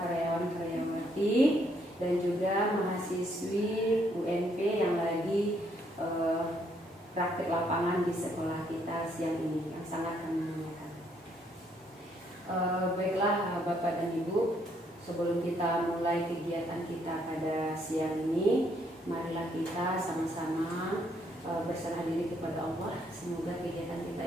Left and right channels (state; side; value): normal; both; correlation 0.70